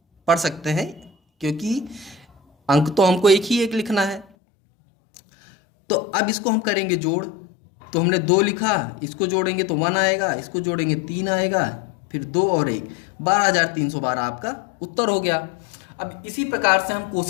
पढ़ सकते हैं, क्योंकि अंक तो हमको एक ही एक लिखना है। तो अब इसको हम करेंगे जोड़, तो हमने 2 लिखा, इसको जोड़ेंगे तो 1 आएगा, इसको जोड़ेंगे 3 आएगा, फिर 2 और 1, 12,312 आपका उत्तर हो गया। अब इसी प्रकार से हम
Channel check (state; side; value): drops out; right; at 4.2 s